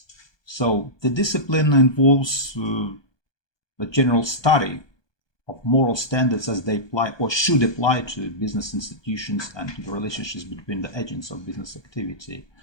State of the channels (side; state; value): right; late; 1.2 ms